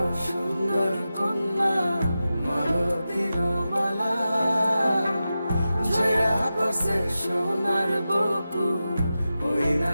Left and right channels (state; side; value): inverted; both; correlation -0.92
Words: সুন্দর কন্যা মালতীর মালা, ঝরা পড়ছে সোনার বকু ওই